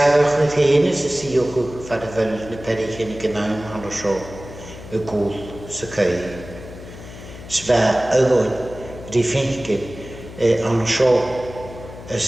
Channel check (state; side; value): noise; left; hum, 15 dB below the sound